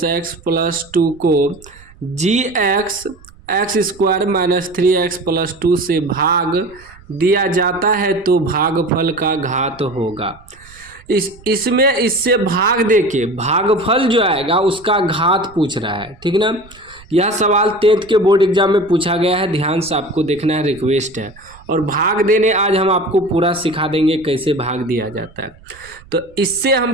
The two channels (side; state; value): right; noise; rumble, 24 dB below the sound